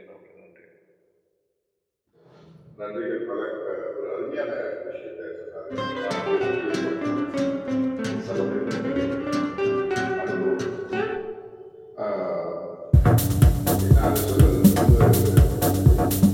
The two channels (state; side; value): identical; both; correlation 1.00